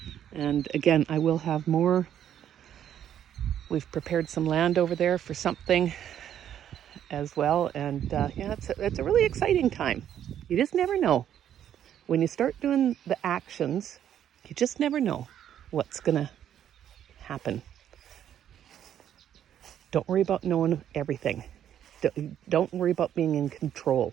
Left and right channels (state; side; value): quieter; left; 10.2 dB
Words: And again, I will have more. We've prepared some land over there for something as well, and it's a really exciting time. You just never know. When you start doing the actions, you just never know what's gonna happen. Don't worry about knowing everything. Don't worry about being in control.